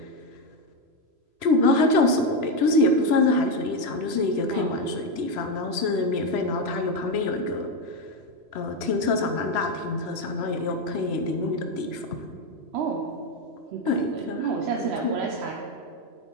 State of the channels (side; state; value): left; late; 3.0 ms